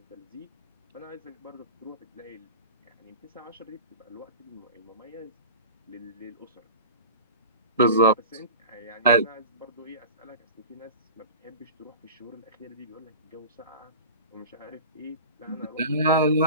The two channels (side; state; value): both; inverted; correlation -0.36